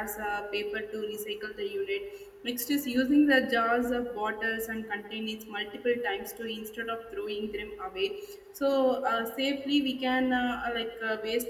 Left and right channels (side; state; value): both; identical; correlation 1.00